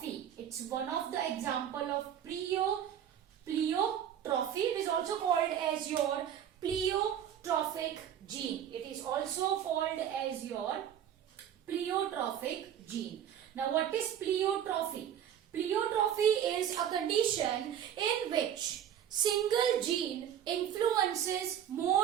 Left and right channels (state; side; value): quieter; left; 9.7 dB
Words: It's one of the example of pleiotrophy. It is also called as your pleiotrophic gene. It is also called as your pleiotrophic gene. Now what is pleiotrophy? Pleiotrophy is a condition in which single gene influences